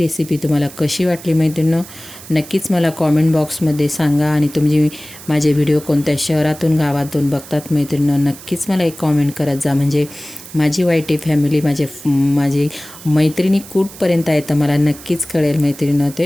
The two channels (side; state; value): right; noise; hiss, 17 dB below the sound